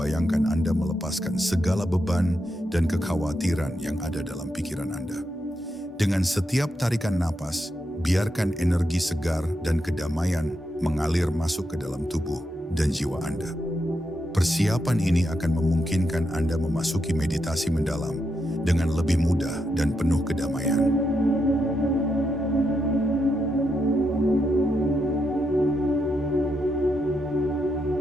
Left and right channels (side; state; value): both; normal; correlation 0.83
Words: Anda melepaskan segala beban dan kekhawatiran yang ada dalam pikiran Anda. Dengan setiap tarikan napas, biarkan energi segar dan kedamaian mengalir masuk ke dalam tubuh dan jiwa Anda. Persiapan ini akan memungkinkan Anda memasuki meditasi mendalam dengan lebih mudah dan penuh kedamaian.